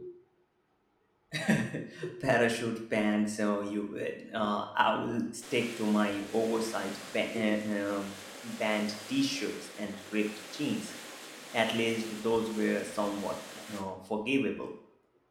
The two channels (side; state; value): both; identical; correlation 1.00